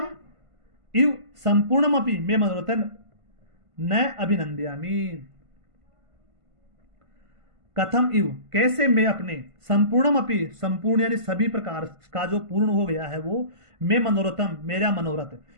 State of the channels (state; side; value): late; left; 1.5 ms